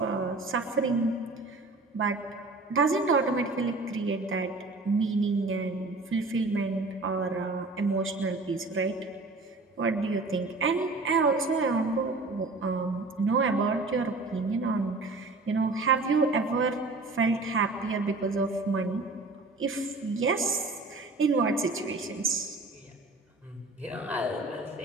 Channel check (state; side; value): quieter; left; 3.4 dB